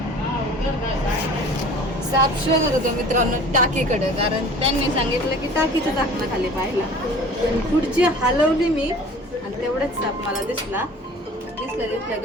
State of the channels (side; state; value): both; normal; correlation 0.45